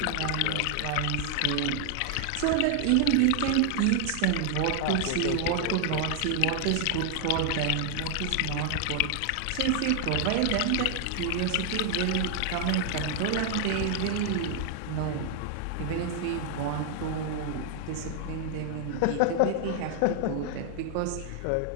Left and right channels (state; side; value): different; both; correlation 0.00